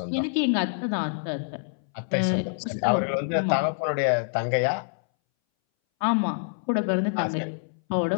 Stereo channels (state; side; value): silent; right; 60 dB below the other